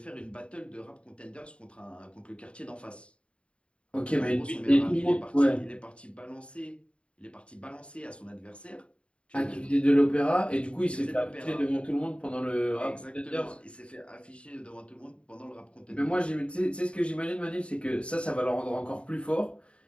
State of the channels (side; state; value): right; late; 0.058 ms